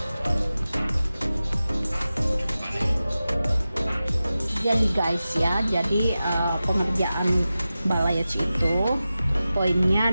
Jadi guys ya, jadi pengerjaan balayage itu poinnya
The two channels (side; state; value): both; inverted; correlation -0.94